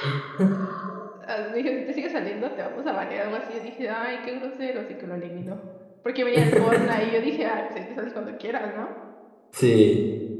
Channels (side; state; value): both; identical; correlation 1.00